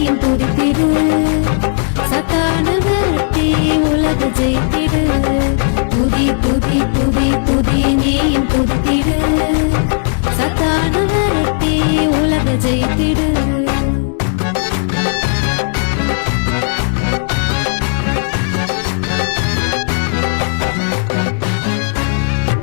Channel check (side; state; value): right; silent; digital silence